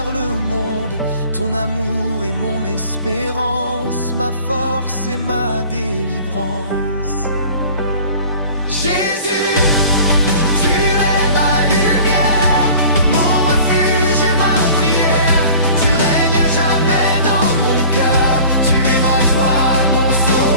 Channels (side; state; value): both; inverted; correlation -0.45